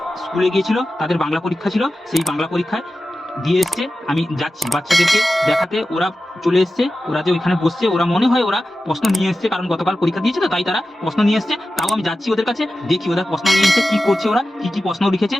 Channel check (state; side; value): normal; both; correlation 0.93